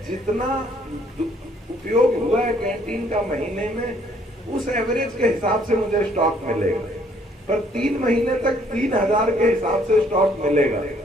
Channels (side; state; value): both; normal; correlation 0.64